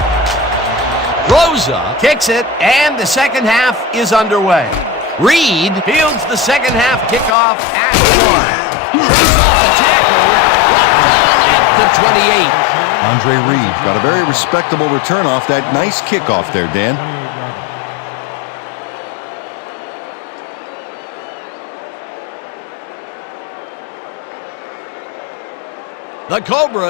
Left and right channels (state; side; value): drops out; right; at 7.4 s